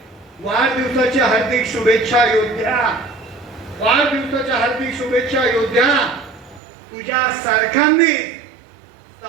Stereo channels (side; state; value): left; drops out; at 6.6 s